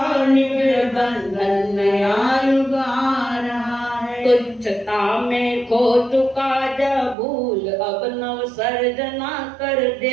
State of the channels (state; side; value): drops out; left; at 7.2 s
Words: निबिड़ बंधन नया युग आ रहा है। तुच्छता में खो चुका जब भूल अब नव सर्जना कर।